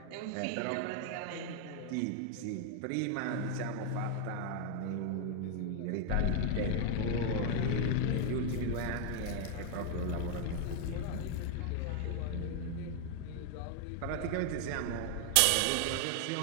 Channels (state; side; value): different; both; correlation 0.00